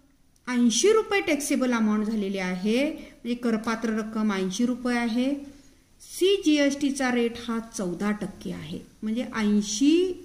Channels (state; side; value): identical; both; correlation 1.00